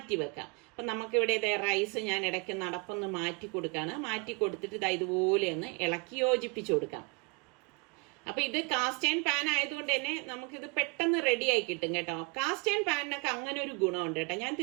വെക്കാം. അപ്പൊ നമുക്ക് ഇവിടെ റൈസ് ഞാൻ ഇടയ്ക്ക് അടപ്പൊന്ന് മാറ്റി കൊടുക്കാണ്. മാറ്റി കൊടുത്തിട്ട് ഇതുപോലെ ഒന്ന് ഇളക്കി യോജിപ്പിച്ചു കൊടുക്കാം. അപ്പൊ ഇത് കാസ്റ്റ് അയൺ പാൻ ആയതുകൊണ്ട് തന്നെ നമുക്കിത് പെട്ടെന്ന് റെഡി ആയി കിട്ടും കേട്ടോ. കാസ്റ്റ് അയൺ പാനിനൊക്കെ അങ്ങനെ ഒരു ഗുണമുണ്ട് കേട്ടോ. ഞാൻ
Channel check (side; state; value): left; quieter; 30.0 dB